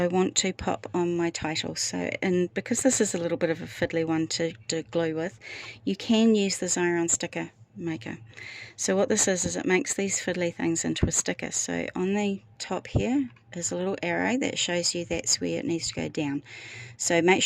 want to pop on my title. So, and because this is a little bit of a fiddly one to glue with, you can use the Xyron sticker maker. So what this is it makes these fiddly things into a sticker. So on the top here is a little arrow that shows you that's where it needs to go down. So make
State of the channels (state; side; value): identical; both; correlation 1.00